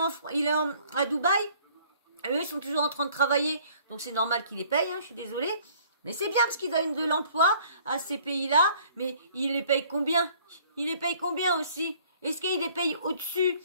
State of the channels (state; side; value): inverted; both; correlation -0.57